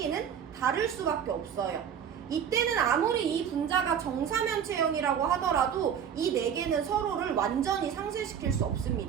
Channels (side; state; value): left; quieter; 8.2 dB